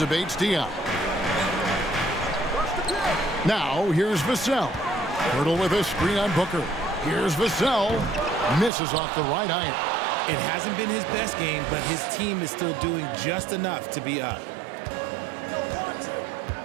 Bates-Diop. Now, here's Vassell. Pirtle with a screen on Booker. Here's Vassell. Misses off the right iron. It hasn't been his best game, but his team is still doing just enough to be up.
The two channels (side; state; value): left; drops out; at 8.7 s